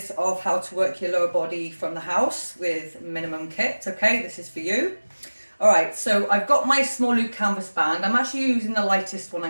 of how to work your lower body from the house with minimum kit, okay, this is for you. All right, so I've got my small loop canvas band. I'm actually using the lightest one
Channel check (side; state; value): both; inverted; correlation -1.00